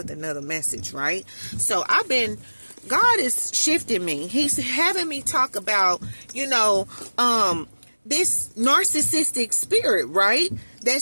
another message, right? So God is shifting me. He's having me talk about, this narcissistic spirit, right?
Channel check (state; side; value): inverted; both; correlation -1.00